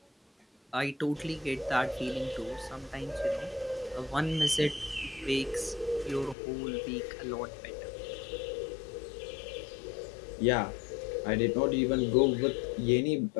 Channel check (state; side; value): drops out; right; at 6.4 s